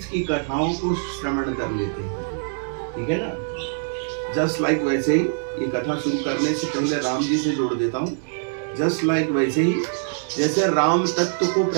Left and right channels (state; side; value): silent; left; digital silence